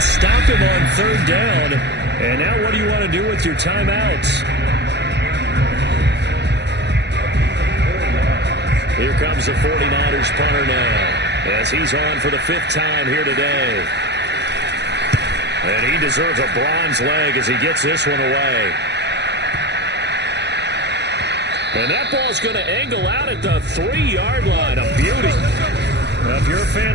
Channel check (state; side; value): late; left; 0.50 ms